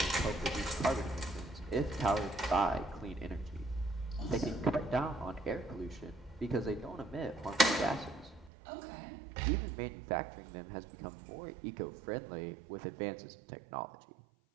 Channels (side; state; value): left; drops out; at 8.5 s